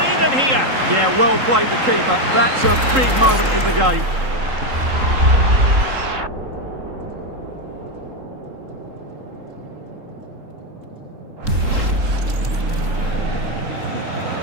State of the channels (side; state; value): left; late; 3.8 ms